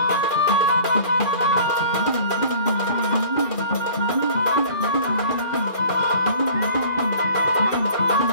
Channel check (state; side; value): late; right; 2.4 ms